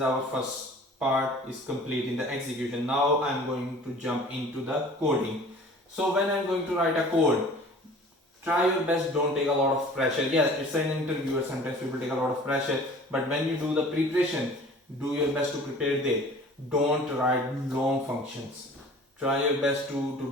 our first part is complete in the execution. Now I'm going to jump into the coding. So when I'm going to write a code, try your best, don't take a lot of pressure. Yeah, it's an interviewer, sometimes people take a lot of pressure, but when you do the preparation, do your best to prepare there. Don't write long functions. Try your best to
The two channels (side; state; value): both; normal; correlation 0.46